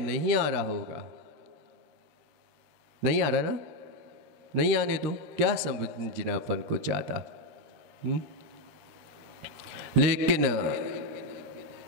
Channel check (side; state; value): left; late; 13 ms